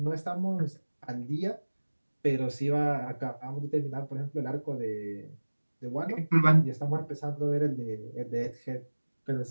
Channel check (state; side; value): inverted; both; correlation -1.00